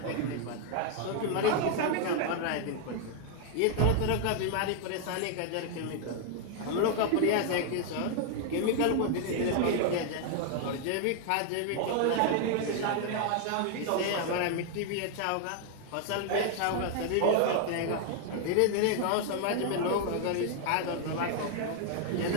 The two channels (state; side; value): different; both; correlation 0.00